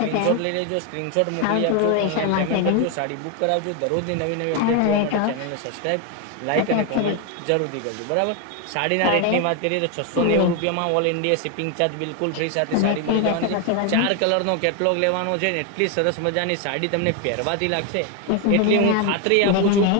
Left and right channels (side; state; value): both; different; correlation 0.01